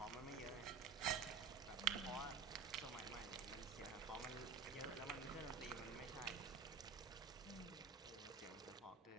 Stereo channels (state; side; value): quieter; left; 5.3 dB